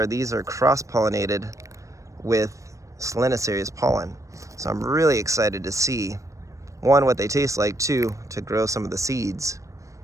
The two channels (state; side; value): late; left; 0.15 ms